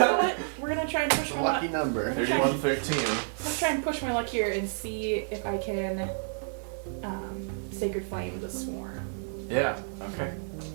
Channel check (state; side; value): silent; left; digital silence